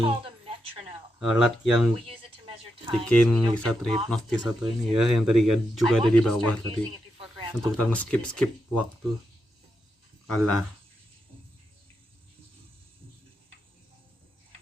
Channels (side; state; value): both; normal; correlation 0.84